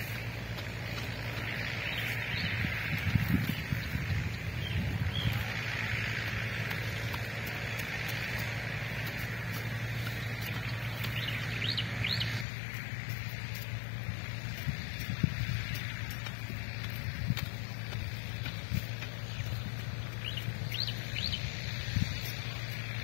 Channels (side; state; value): right; drops out; at 12.5 s